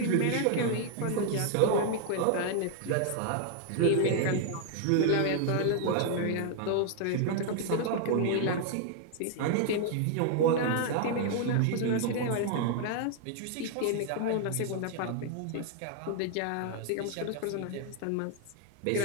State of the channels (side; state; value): both; different; correlation 0.00